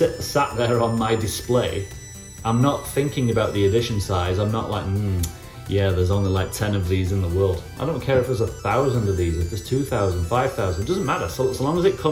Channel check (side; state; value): both; identical; correlation 1.00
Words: there on my display, I'm not thinking about the edition size. I'm not like, yeah, there's only like 10 of these in the world. I don't care if there's 1,000 of these, if there's 2,000, 5,000, it doesn't matter. So long as it